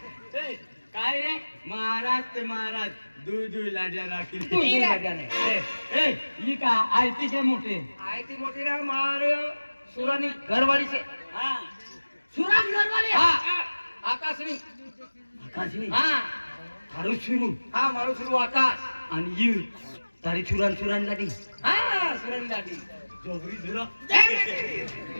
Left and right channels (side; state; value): both; inverted; correlation -1.00